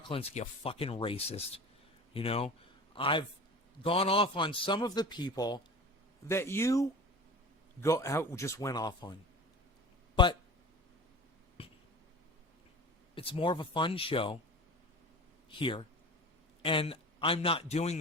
Klinsky a fucking racist. I've gone off on some of the people that you just went off on. But it's more of a fun show here. And I'm not doing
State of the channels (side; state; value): both; normal; correlation 0.36